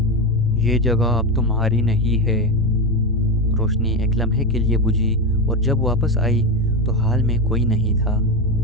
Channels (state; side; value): normal; both; correlation 0.16